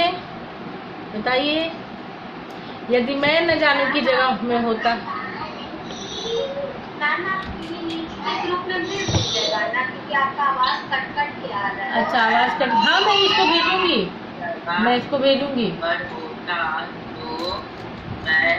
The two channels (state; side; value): identical; both; correlation 1.00